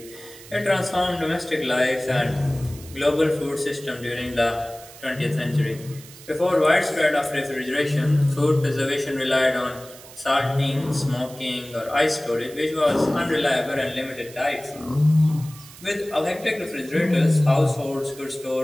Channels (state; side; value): noise; right; hiss, 19 dB below the sound